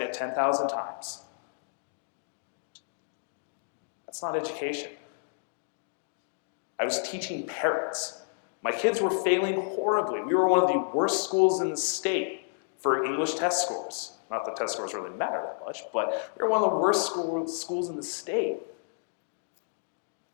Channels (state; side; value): silent; right; digital silence